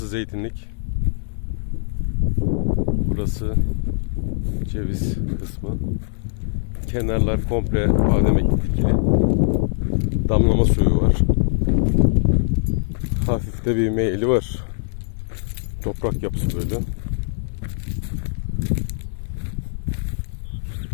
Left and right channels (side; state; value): right; silent; digital silence